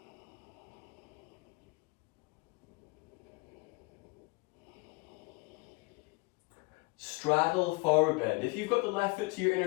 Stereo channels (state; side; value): quieter; right; 27.0 dB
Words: Straddle forward bend. If you've got the left foot to your